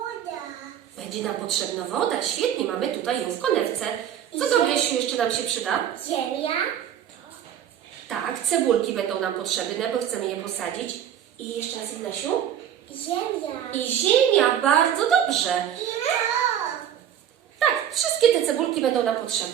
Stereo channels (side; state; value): left; quieter; 9.8 dB